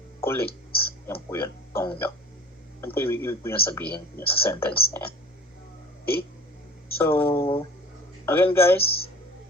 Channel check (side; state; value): both; normal; correlation 0.43